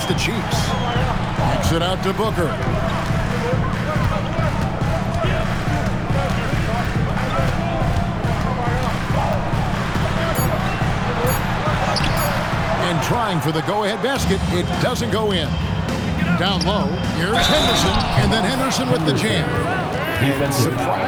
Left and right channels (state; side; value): identical; both; correlation 1.00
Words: to Cheeks. Kicks it out to Booker. trying for the go-ahead basket. It doesn't go in. Down low, here's Henderson, and then Henderson with the jam. And